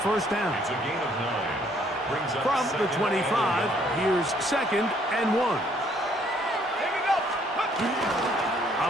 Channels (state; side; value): normal; both; correlation 0.65